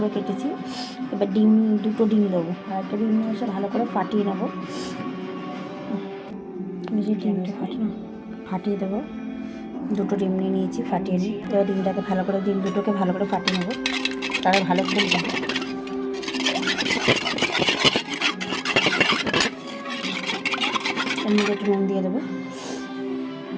কেটেছি। এবার দুটো ডিম দেবো, আর একটা ডিম নিয়ে এসে ভালো করে ফাটিয়ে নেবো। এই যে ডিমটা ফাটিয়ে দেবো। দুটো ডিম নিয়ে নিয়েছি, ফাটিয়ে নিই। এবার ডিমটাকে ভালো করে, ডিম দুটোকে ভালো করে ফাটিয়ে নেবো, তারা ভালো ফুলবে। এর মধ্যে একটু নুন দিয়ে দেবো,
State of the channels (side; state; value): both; identical; correlation 1.00